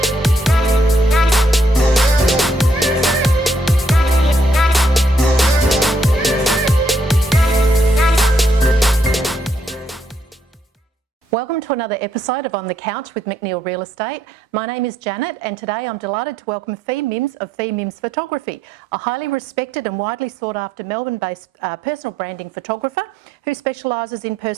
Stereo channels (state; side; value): normal; both; correlation 0.74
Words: Welcome to another episode of On the Couch with McNeill Real Estate. My name is Janet and today I'm delighted to welcome Fi Mims of Fi Mims Photography, a highly respected and widely sought after Melbourne-based personal branding photographer who specialises in